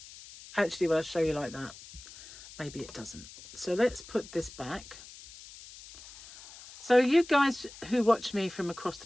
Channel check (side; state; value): left; noise; hiss, 17 dB below the sound